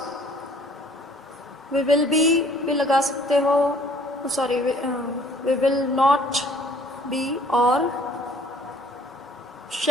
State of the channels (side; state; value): both; normal; correlation 0.57